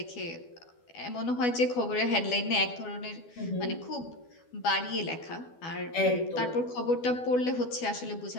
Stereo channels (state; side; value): late; right; 12 ms